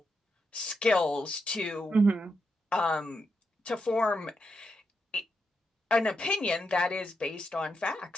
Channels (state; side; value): normal; both; correlation 0.83